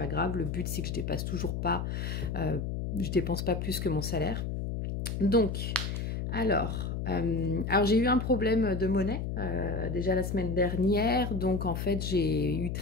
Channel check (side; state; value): left; noise; hum, 3 dB below the sound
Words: grave. Le but c'est que je dépasse toujours pas, je dépense pas plus que mon salaire. Donc, alors j'ai eu un problème de monnaie déjà la semaine dernière, donc en fait j'ai eu